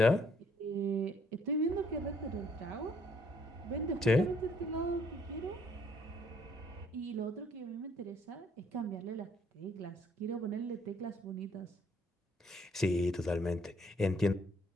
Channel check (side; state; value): both; normal; correlation 0.65